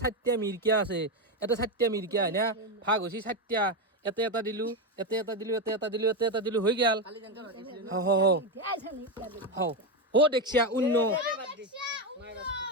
4টা মিৰকিয়া আছে এটা 4টা মিৰকিয়া হয় না ভাগ হৈছে 4টা এটা দিলো হৈ গেল দেখছিয়া উন্ন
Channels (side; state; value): both; normal; correlation 0.11